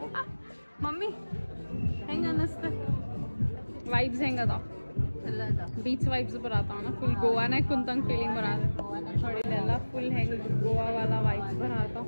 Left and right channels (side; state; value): both; inverted; correlation -1.00